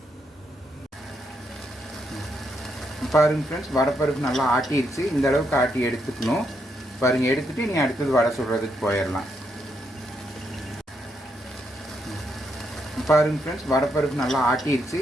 பாருங்கள் ஃப்ரெண்ட்ஸ், வடைப்பருப்பு நல்லா ஆட்டிடுச்சு. இந்த அளவுக்கு ஆட்டி எடுத்துக்கணும். பாருங்கள், எடுத்துகிட்டு நீ அடுத்தது வடை சுடுறதுக்கு போயிடலாம். பாருங்கள் ஃப்ரெண்ட்ஸ், வடைப்பருப்பு நல்லா ஆட்டிடுச்சு.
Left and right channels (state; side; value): normal; both; correlation 0.78